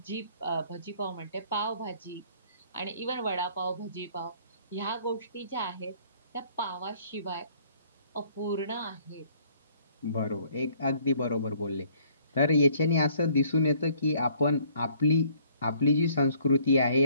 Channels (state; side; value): inverted; both; correlation -0.60